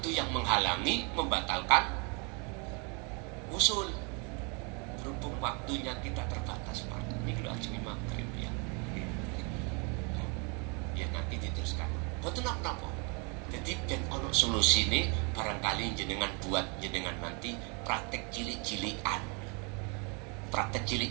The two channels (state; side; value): quieter; left; 33.7 dB